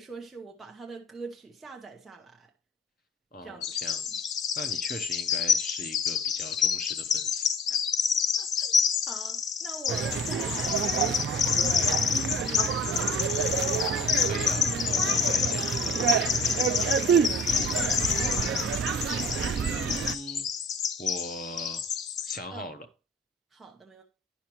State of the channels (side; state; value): both; normal; correlation 0.48